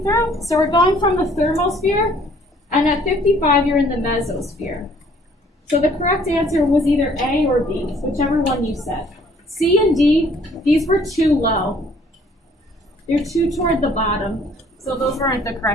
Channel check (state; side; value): normal; both; correlation 0.59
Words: through. So we're going from the thermosphere, and at 55 you're in the mesosphere. So the correct answer was either A or B, whichever one you said. C and D, these were too low. They're too toward the bottom. So those weren't the